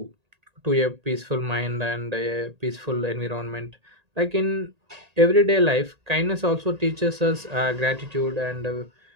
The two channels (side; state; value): left; late; 1.8 ms